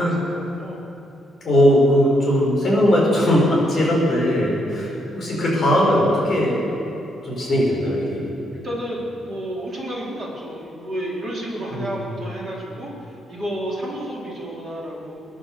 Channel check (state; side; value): normal; both; correlation 0.76